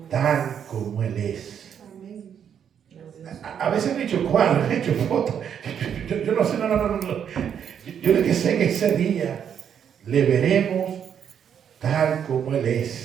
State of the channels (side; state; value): left; quieter; 8.4 dB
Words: tal como Él es. Amén. A veces me he hecho cuadros, he hecho fotos. Yo no sé, no. Yo lo que sé que ese día le veremos tal como Él